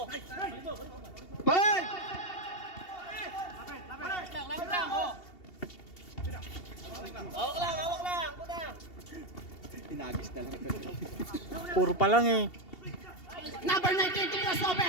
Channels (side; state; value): right; late; 2.7 ms